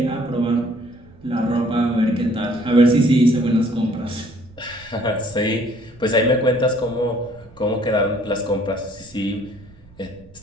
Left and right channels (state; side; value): noise; right; rumble, 24 dB below the sound